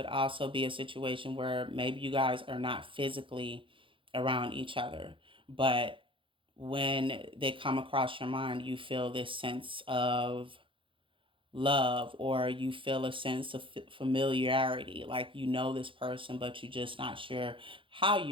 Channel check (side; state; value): left; late; 0.25 ms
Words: also be a situation where maybe you guys are not physically around each other, but when they come across your mind, you feel this sense of love, or you feel a sense of familiarity, like you know this person but you're just not sure how